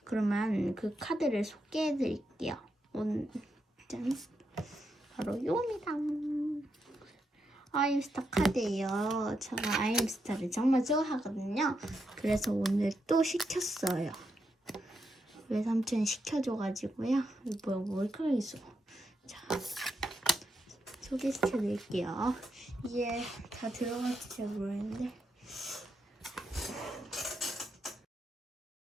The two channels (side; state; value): both; normal; correlation 0.83